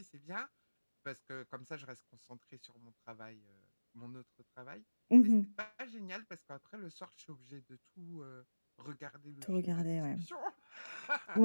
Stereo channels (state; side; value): inverted; both; correlation -1.00